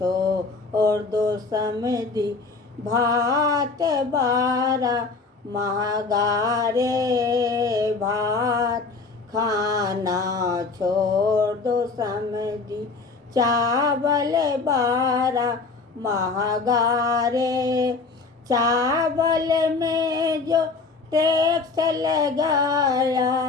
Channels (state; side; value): quieter; right; 4.1 dB